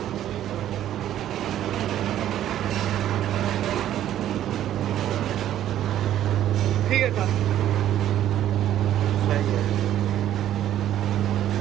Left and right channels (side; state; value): left; quieter; 11.8 dB